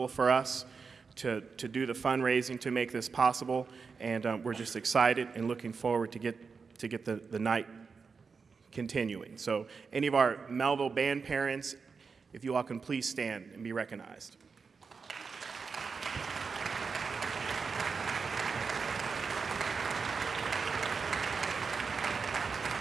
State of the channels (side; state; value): left; quieter; 5.1 dB